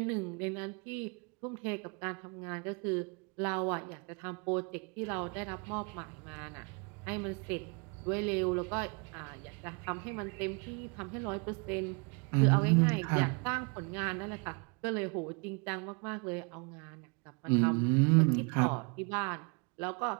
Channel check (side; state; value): left; quieter; 33.8 dB